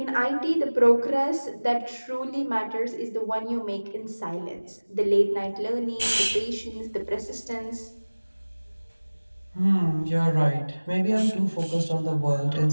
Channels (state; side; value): inverted; both; correlation -1.00